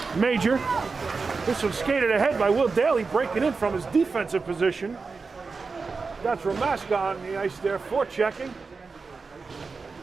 Major. This one skated ahead by Will Daly, breaking in from his defensive position. That's Ramaska on the ice there, forechecking.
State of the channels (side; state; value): left; quieter; 4.5 dB